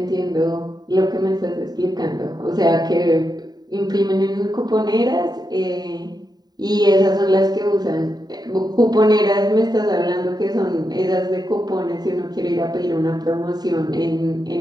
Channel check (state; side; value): late; left; 0.20 ms